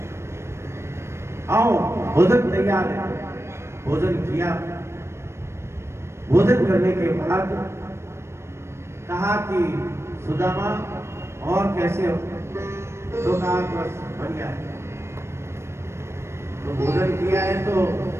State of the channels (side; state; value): left; late; 0.13 ms